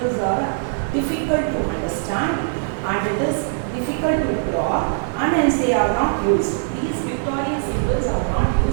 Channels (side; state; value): left; silent; digital silence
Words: are difficult to understand and it is difficult to draw, and hence they are not used. These pictorial symbols are not